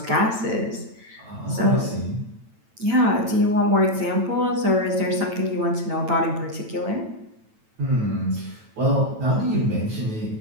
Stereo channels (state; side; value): late; left; 9.0 ms